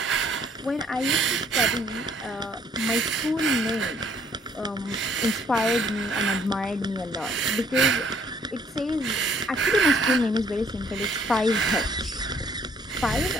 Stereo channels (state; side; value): normal; both; correlation 0.63